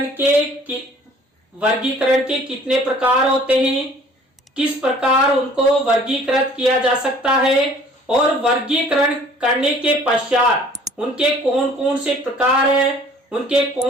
के वर्गीकरण के कितने प्रकार होते हैं, किस प्रकार उनको वर्गीकृत किया जा सकता है और वर्गीकरण करने के पश्चात उनके कौन कौन से प्रकार हैं, उनके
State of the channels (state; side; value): normal; both; correlation 0.53